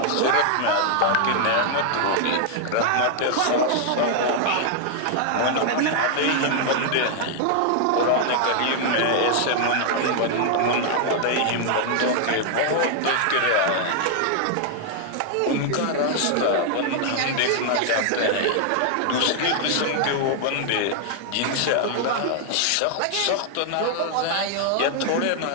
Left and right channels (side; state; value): both; different; correlation 0.00